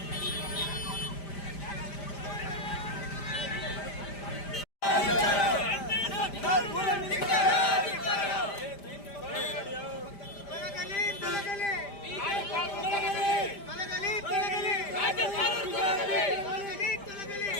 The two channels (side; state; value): right; late; 5.0 ms